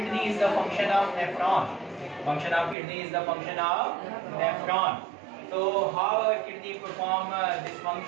is the function of nephron. Function of kidney is the function of nephron. So how our kidney perform this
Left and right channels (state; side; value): drops out; left; at 2.8 s